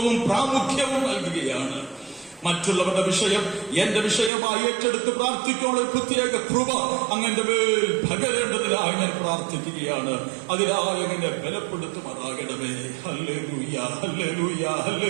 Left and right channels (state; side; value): drops out; left; at 4.3 s